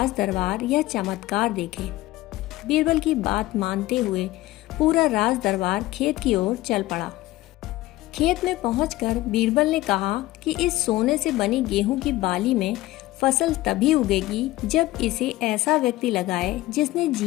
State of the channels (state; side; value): quieter; right; 17.5 dB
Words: दरबार यह चमत्कार देखे। बीरबल की बात मानते हुए पूरा राज दरबार खेत की ओर चल पड़ा। खेत में पहुंचकर बीरबल ने कहा कि इस सोने से बनी गेहूं की बाली में फसल तभी उगेगी जब इसे ऐसा व्यक्ति लगाए जिसने